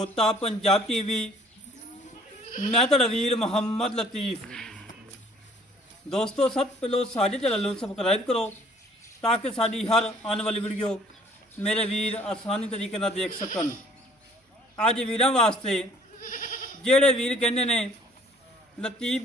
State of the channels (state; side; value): normal; both; correlation 0.56